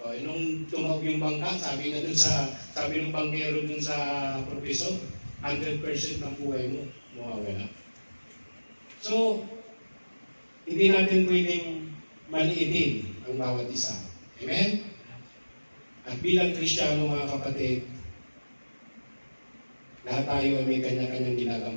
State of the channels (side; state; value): both; inverted; correlation -1.00